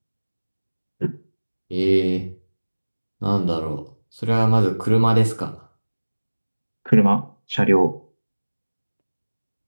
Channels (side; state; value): both; inverted; correlation -1.00